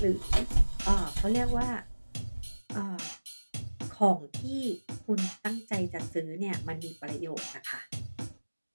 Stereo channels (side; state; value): both; inverted; correlation -1.00